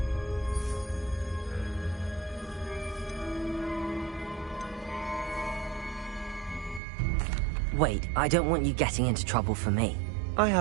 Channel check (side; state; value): left; drops out; at 6.8 s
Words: Wait, I don't want you getting into trouble for me. I